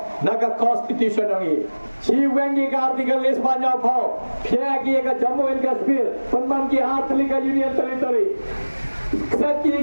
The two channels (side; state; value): both; inverted; correlation -1.00